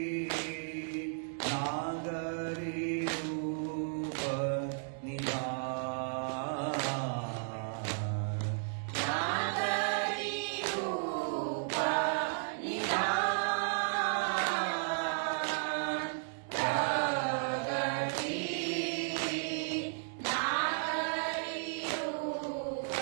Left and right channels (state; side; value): silent; left; digital silence